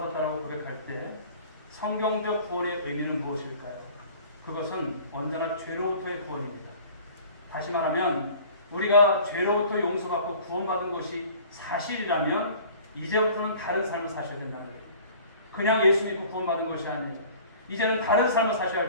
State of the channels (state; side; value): inverted; both; correlation -0.47